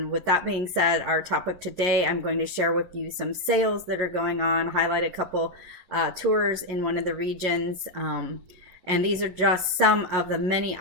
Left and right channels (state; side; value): late; left; 11 ms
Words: with that being said, our topic today, I'm going to share with you some sales that are going on, highlight a couple tours in one of the regions. And these are just some of the many